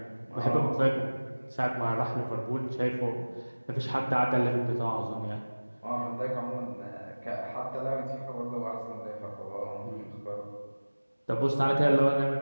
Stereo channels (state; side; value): inverted; both; correlation -1.00